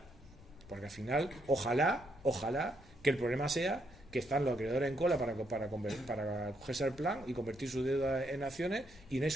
porque al final, ojalá que el problema sea que están los acreedores en cola para cogerse al plan y convertir su deuda en acciones, y no hay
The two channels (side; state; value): left; noise; rumble, 20 dB below the sound